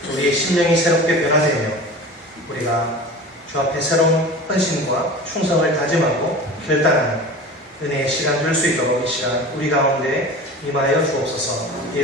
우리의 심령이 새롭게 변화되며 우리가 주 앞에 새로운 헌신과 충성을 다짐하고 결단하는 은혜의 시간 될 수 있도록 이 시간 우리 가운데 임하여 주옵소서.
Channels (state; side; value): normal; both; correlation 0.36